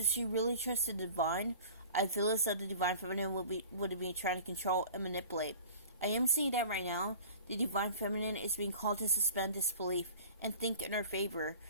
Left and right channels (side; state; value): both; inverted; correlation -0.42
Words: she really trusts the divine, I feel as though the divine feminine would be trying to control and manipulate. I am seeing that right now the divine feminine is being called to suspend disbelief and think in her favor.